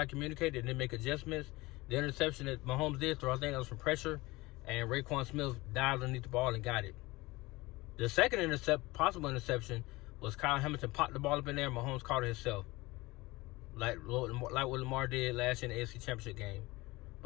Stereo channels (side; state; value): right; quieter; 21.3 dB